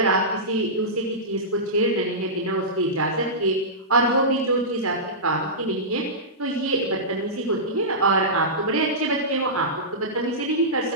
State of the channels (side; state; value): both; normal; correlation -0.16